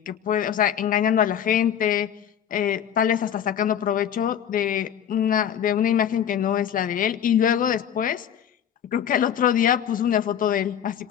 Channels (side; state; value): right; quieter; 9.3 dB